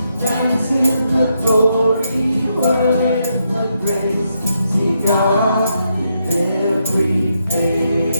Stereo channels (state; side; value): inverted; both; correlation -0.80